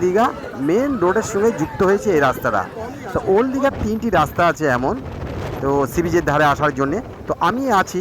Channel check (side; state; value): both; identical; correlation 1.00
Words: দীঘা মেন রোডের সঙ্গে যুক্ত হয়েছে এই রাস্তাটা। তো ওল্ড দীঘার 3টি রাস্তা আছে এমন, তো সি বিচের ধারে আসার জন্যে। তো আমি আছি